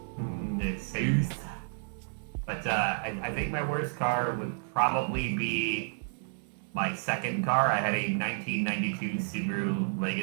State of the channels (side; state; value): left; silent; 57 dB below the other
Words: The South. But I think my worst car would probably be my second car. I had a 1992 Subaru